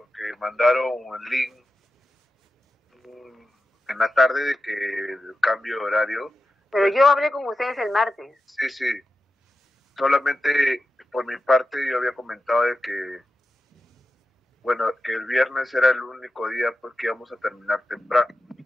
mandaron el link en la tarde de que el cambio de horario. Pero yo hablé con ustedes el martes. Sí, sí. Solamente por mi parte yo había comentado de que, bueno, que el viernes era el único día pues que íbamos a terminar temprano.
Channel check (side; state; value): both; normal; correlation 0.91